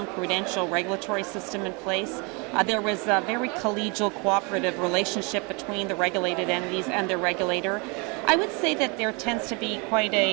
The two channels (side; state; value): left; quieter; 31.1 dB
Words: prudential regulatory system in place. There was a very collegial, cooperative relationship between the regulated entities and their regulator. I would say that there tends to be quite